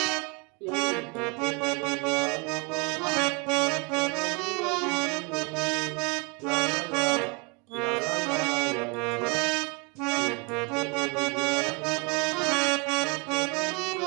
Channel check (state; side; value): quieter; left; 30.5 dB